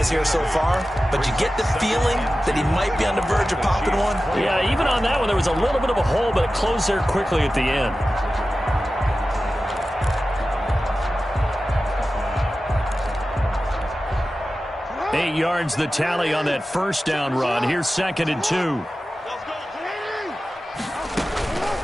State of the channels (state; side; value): normal; both; correlation 0.94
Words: here so far, but you get the feeling that he might be on the verge of popping one. Yeah, even on that one, there was a little bit of a hole, but it closed there quickly at the end. Eight yards the tally on that first down run. Here's 2nd and 2.